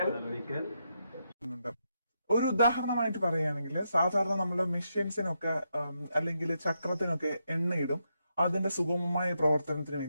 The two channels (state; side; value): inverted; both; correlation -0.82